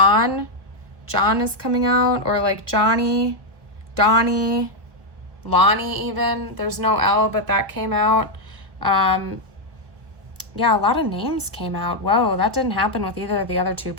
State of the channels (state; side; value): late; left; 1.2 ms